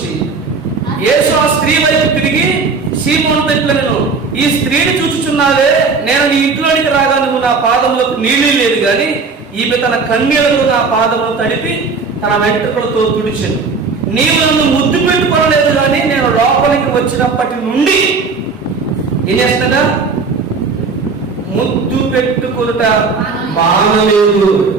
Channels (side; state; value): left; quieter; 4.6 dB